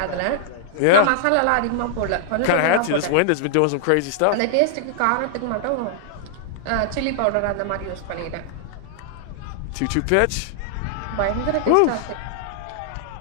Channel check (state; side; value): different; both; correlation -0.01